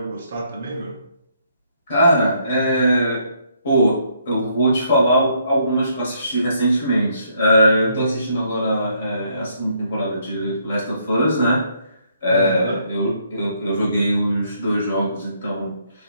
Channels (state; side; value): inverted; both; correlation -0.71